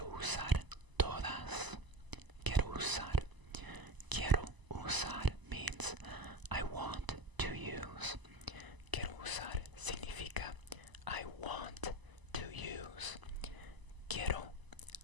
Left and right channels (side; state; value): left; late; 1.0 ms